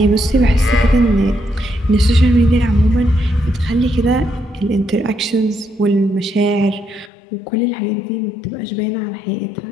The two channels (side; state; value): right; drops out; at 7.1 s